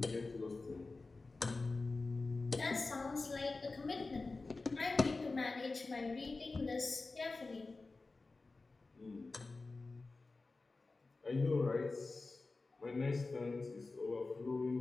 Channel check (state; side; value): quieter; right; 3.6 dB